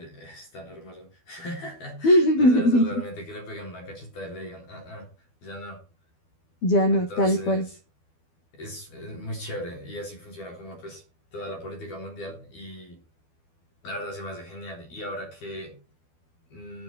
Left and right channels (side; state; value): right; late; 12 ms